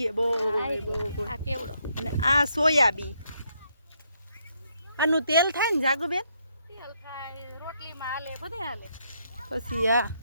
બહુ આ કેવડો અને આ સોયાબી આનું તેલ થાય ને જાગુબેન તેલ થાય રોટલીમાં હાલે બધે હાલે પછી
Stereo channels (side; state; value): both; inverted; correlation -0.74